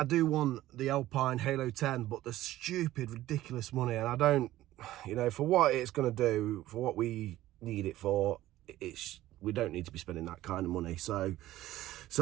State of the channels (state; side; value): quieter; left; 15.1 dB